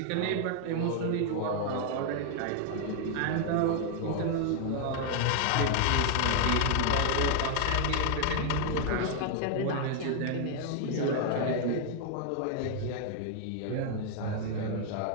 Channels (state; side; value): different; both; correlation 0.00